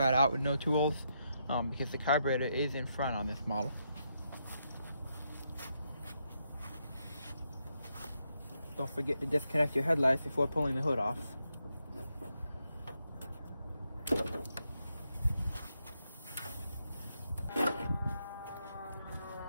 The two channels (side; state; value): both; inverted; correlation -0.81